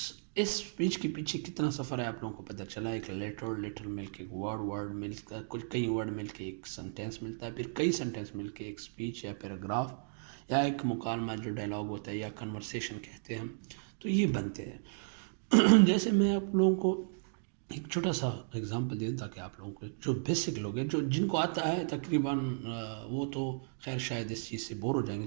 سپیچ کے پیچھے کتنا سفر ہے آپ لوگوں کو پتہ چلا. ایک لیٹر مل کے, ایک ورڈ مل کے, کئی ورڈ مل کے ایک سنٹینس ملتا ہے, پھر کئی سنٹینس مل کے ایک سپیچ یا پیراگراف یا ایک مکالمہ جو ڈائلاگ ہوتا ہے یا کنورسیشن کہتے ہیں ہم, تو یہ بنتے ہیں. جیسے میں آپ لوگوں کو ایک چھوٹا سا اگزامپل دیں تاکہ آپ لوگوں کو جو بیسک لوگ ہیں, جو جن کو آتا ہے تقریباً وہ تو خیر شاید اس چیز سے بور ہو جائیں گے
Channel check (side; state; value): left; silent; digital silence